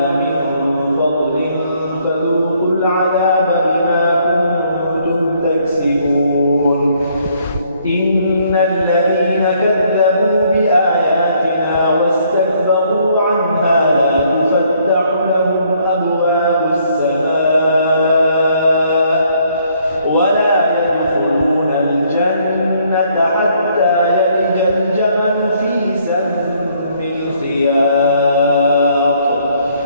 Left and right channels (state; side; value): inverted; both; correlation -0.67